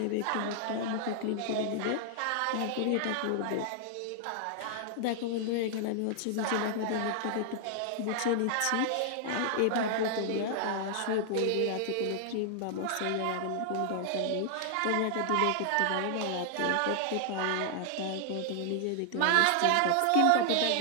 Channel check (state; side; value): different; both; correlation -0.01